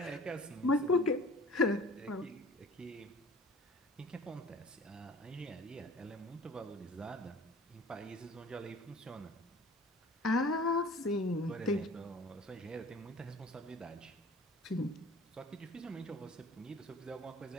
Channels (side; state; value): both; normal; correlation 0.46